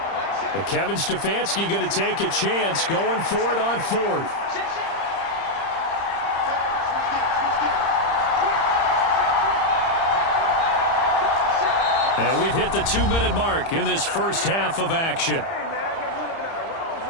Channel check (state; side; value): late; right; 30 ms